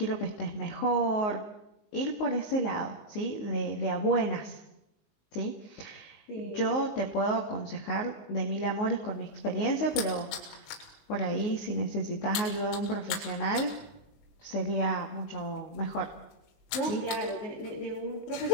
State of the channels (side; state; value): right; late; 20 ms